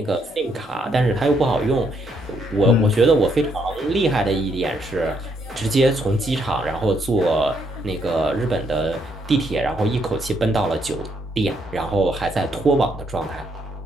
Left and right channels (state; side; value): normal; both; correlation 0.73